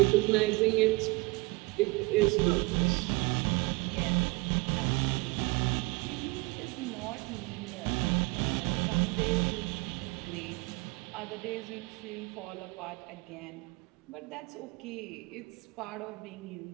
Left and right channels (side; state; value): left; quieter; 24.5 dB